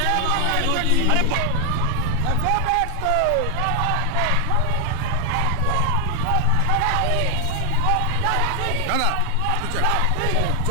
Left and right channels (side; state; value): both; different; correlation 0.00